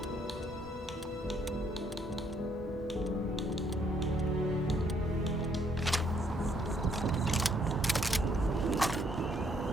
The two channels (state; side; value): normal; both; correlation 0.69